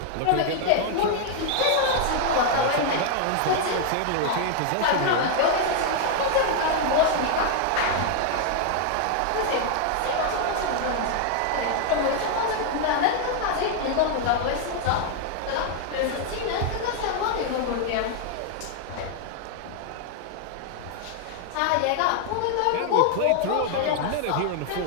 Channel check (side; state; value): both; different; correlation 0.00